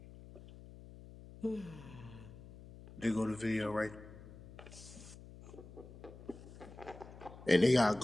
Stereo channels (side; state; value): left; noise; hum, 17 dB below the sound